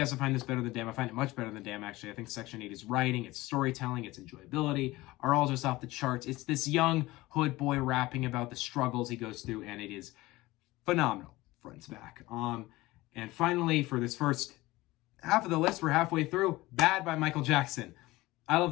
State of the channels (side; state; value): right; quieter; 19.3 dB